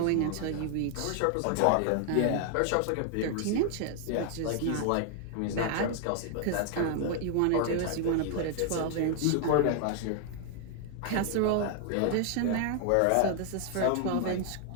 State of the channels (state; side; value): different; both; correlation 0.00